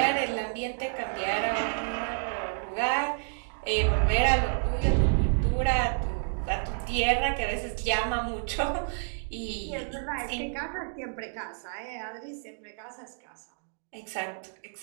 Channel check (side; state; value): left; silent; digital silence